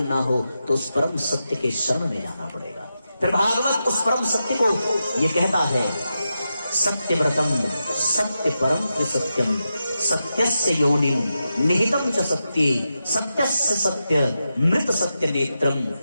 हो तो उस परम सत्य के शरण में जाना पड़ेगा। फिर भागवत उस परम सत्य को ये कहता है, सत्यव्रतम सत्य परम त्रिसत्यम सत्यस्य योनिम निहितम च सत्ये सत्यस्य सत्य मृत सत्य नेत्रम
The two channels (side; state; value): both; inverted; correlation -0.88